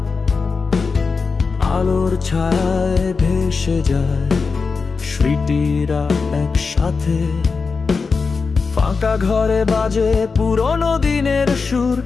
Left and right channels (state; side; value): quieter; right; 4.7 dB